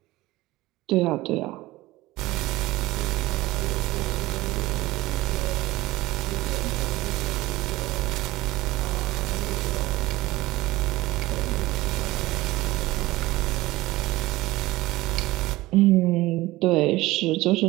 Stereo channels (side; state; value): left; quieter; 18.6 dB